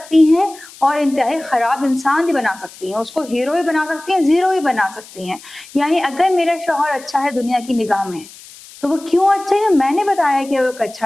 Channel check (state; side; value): noise; left; hiss, 20 dB below the sound